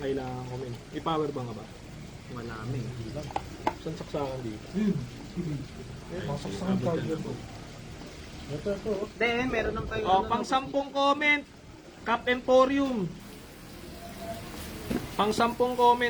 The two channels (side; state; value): both; identical; correlation 1.00